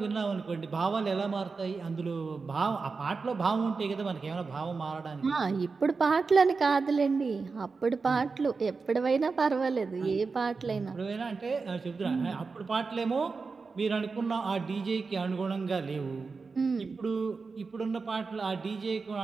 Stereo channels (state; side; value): quieter; left; 4.5 dB